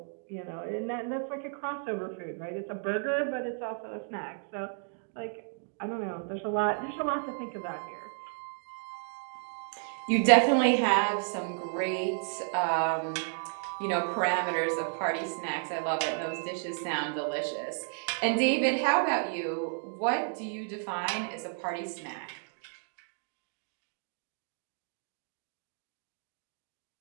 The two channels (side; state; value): left; silent; 56 dB below the other